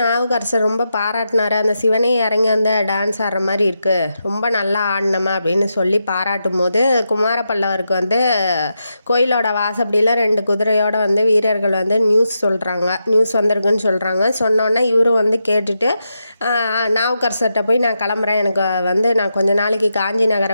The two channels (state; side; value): inverted; both; correlation -0.86